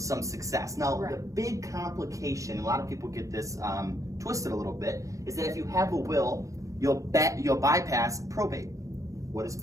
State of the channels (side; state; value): left; late; 0.16 ms